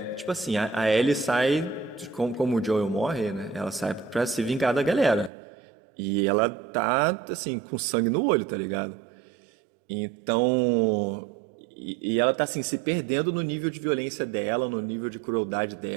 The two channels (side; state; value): left; drops out; at 5.3 s